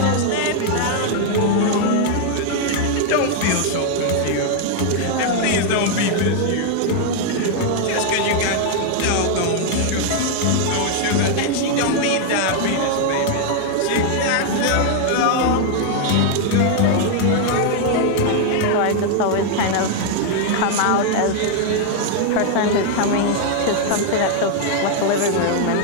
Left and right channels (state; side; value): different; both; correlation 0.00